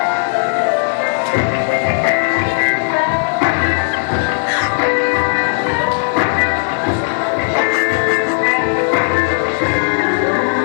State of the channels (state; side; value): silent; right; digital silence